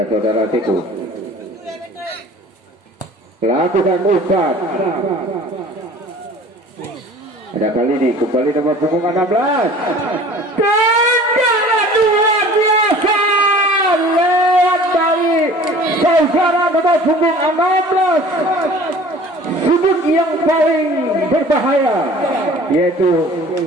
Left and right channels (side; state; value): both; normal; correlation 0.46